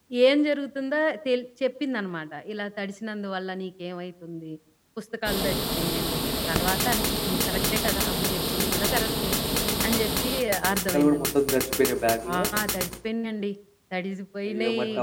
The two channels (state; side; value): identical; both; correlation 1.00